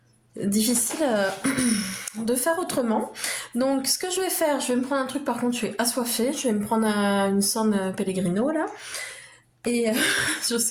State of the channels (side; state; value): both; identical; correlation 1.00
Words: difficile de faire autrement. Donc ce que je vais faire, je vais me prendre un truc. Par contre, je suis assoiffée. Je vais me prendre une San Pellegrino là. Et je